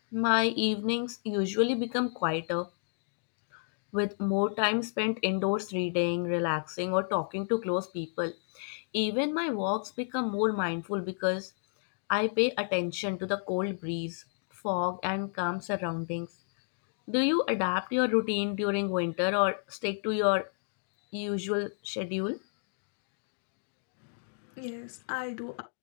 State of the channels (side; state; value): right; silent; digital silence